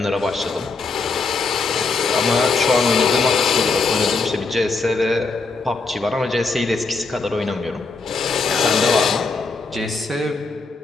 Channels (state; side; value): quieter; right; 4.2 dB